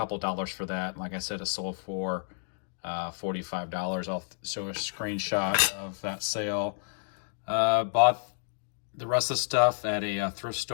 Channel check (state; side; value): silent; right; digital silence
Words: dollars for that. Like I said, it sold for $45. I'll show a screenshot of that sale. Bought the rest of the stuff at a thrift